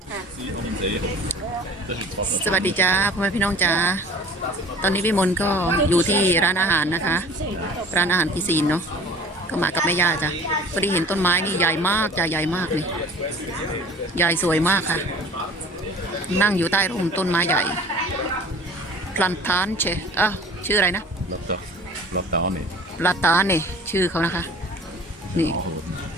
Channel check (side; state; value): both; normal; correlation 0.45